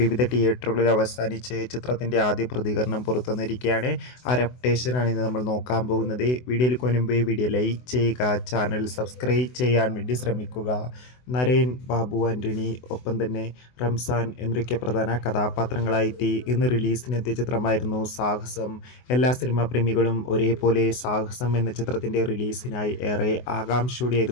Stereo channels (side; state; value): right; late; 24 ms